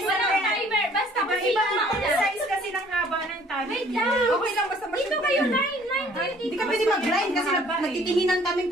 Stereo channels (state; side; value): normal; both; correlation 0.57